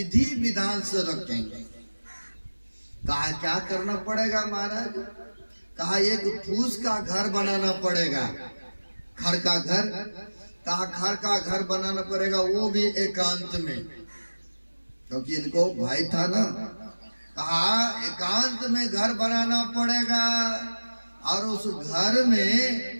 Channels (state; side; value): inverted; both; correlation -1.00